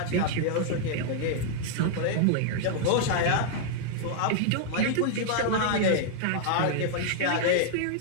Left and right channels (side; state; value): both; different; correlation -0.01